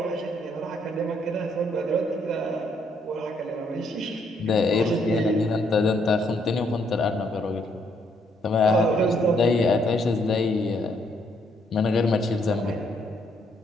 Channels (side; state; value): both; normal; correlation 0.71